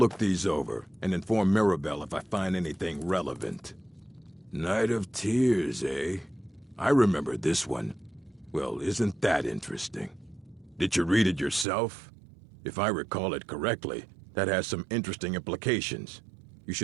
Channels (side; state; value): left; drops out; at 11.7 s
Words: these over and inform Mirabelle if I find anything relevant. Night of Tears, eh? I remember this one. Well, isn't that interesting? Did you read it yourself? If I recall it correctly, that has some interesting implications. You